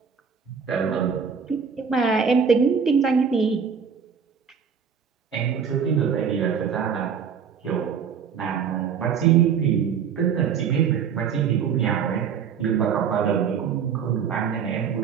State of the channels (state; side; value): quieter; left; 6.9 dB